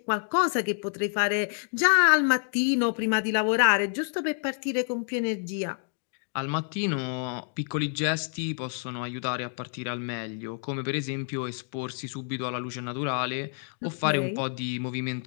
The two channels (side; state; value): right; silent; 59 dB below the other